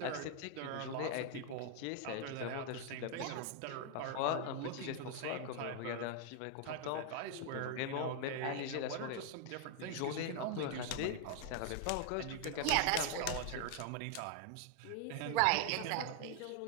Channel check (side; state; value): both; different; correlation 0.00